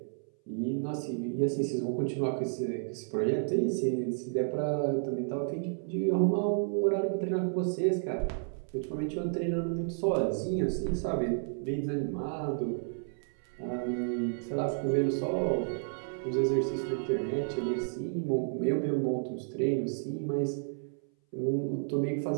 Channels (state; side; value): silent; left; 57 dB below the other